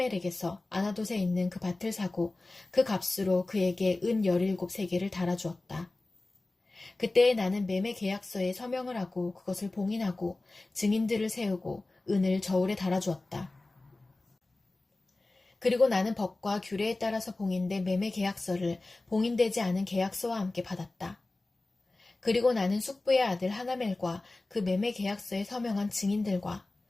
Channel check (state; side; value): quieter; right; 3.0 dB